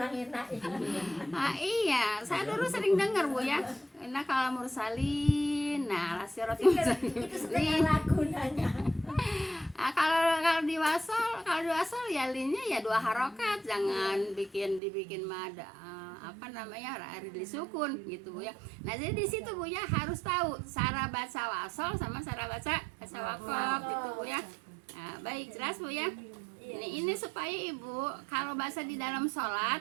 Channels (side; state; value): left; drops out; at 14.8 s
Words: enak. iya, saya dulu sering dengar Bu ya. Inna kalamil mursalin ila siratim mustaqim. Itu setengah lagu nanya. Kalau di wasal ya linnya ya 2 harokat, jangan dibikin mad arid disukun gitu Bu ya. Nah jadi di situ Bu ya harus tahu cara baca wasal sama cara baca wakaf gitu Bu ya. Nah, baik jelas Bu ya. Ini supaya Ibu kalau bahasa di dalam